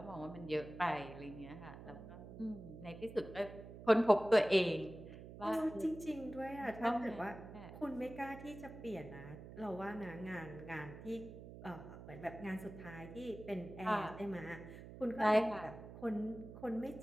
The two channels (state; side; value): noise; right; hum, 13 dB below the sound